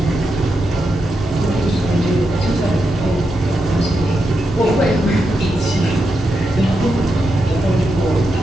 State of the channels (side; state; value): both; normal; correlation 0.86